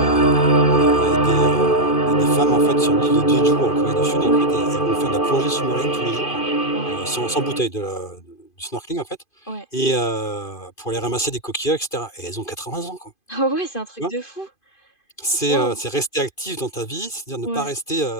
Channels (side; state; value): right; late; 2.5 ms